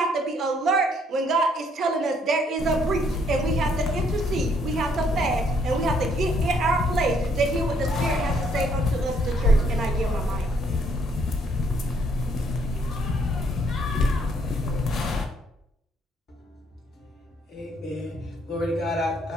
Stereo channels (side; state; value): both; normal; correlation 0.67